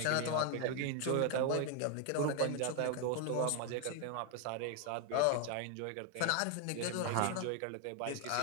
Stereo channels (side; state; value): both; different; correlation 0.01